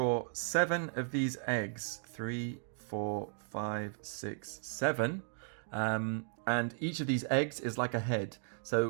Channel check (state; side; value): silent; left; 54 dB below the other